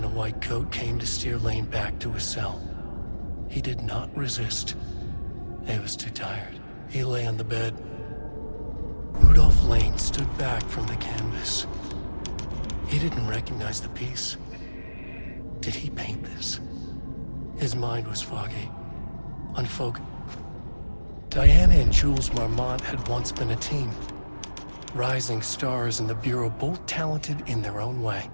a white coat came to steer Lane back to his cell. He did not resist. He was too tired. He lay on the bed. Rudolph Lane stood back from the canvas. He didn't recognize the piece. Did he paint this? His mind was foggy, unfocused. Diana and Jules Marmont had once been a team. Rising stars in the Bureau, both talented in their own way.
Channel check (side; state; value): both; inverted; correlation -1.00